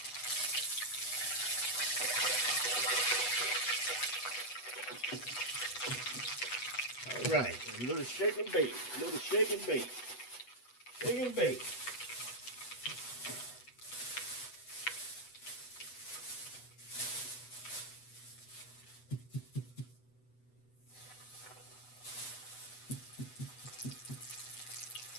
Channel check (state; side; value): late; right; 8.1 ms